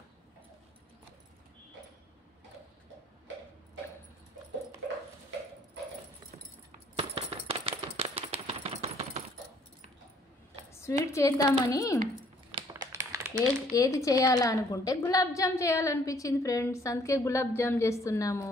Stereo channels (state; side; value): normal; both; correlation 0.62